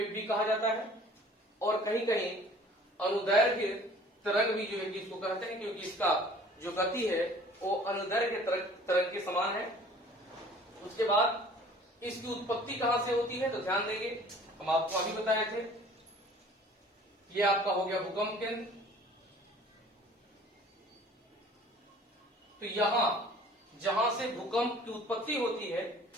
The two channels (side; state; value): both; normal; correlation 0.50